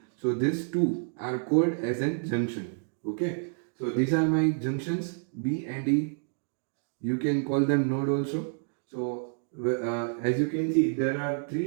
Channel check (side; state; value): left; silent; digital silence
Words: So these two are called as a junction. Okay. So these are my junctions B and E. You can call them node also. So as you can see, there are